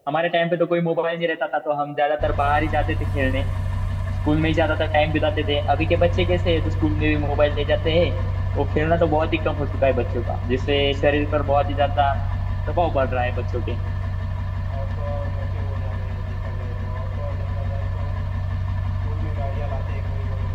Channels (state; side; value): identical; both; correlation 1.00